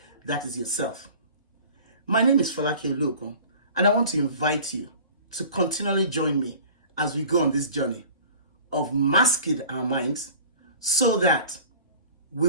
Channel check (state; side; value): inverted; both; correlation -0.44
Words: that is yourself. My name is Folake Oluokun, and I want to invite you to continually join me as we go on this journey of masking our minds so that we